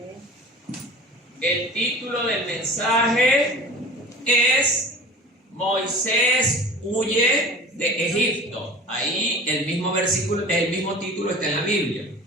El título del mensaje es Moisés huye de Egipto. Ahí el mismo versículo, el mismo título está en la Biblia.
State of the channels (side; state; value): both; normal; correlation 0.40